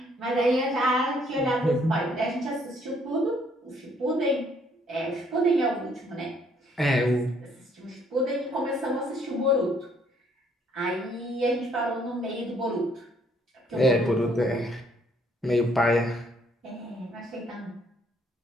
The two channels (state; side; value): normal; both; correlation 0.66